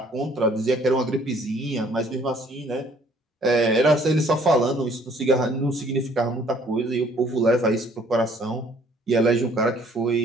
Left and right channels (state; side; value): normal; both; correlation 0.59